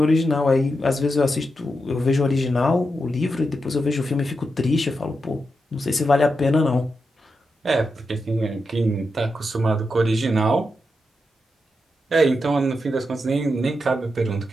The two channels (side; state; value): both; normal; correlation 0.87